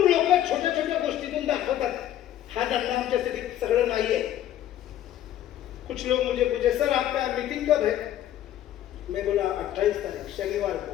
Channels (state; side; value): quieter; right; 12.1 dB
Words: लोक छोट्या छोट्या गोष्टीतून दाखवतात हा धंदा आमच्यासाठी सगळं नाही आहे. कुछ लोग मुझे पूछे सर आपका मीटिंग कब है. मैं बोला 28 तारीख शनिवार को.